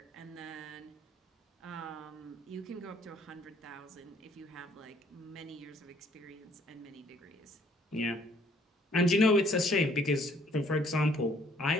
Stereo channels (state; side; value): normal; both; correlation 0.62